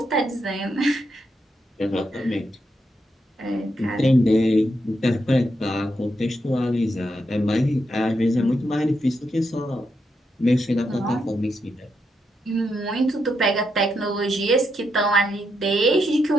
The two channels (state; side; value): normal; both; correlation 0.82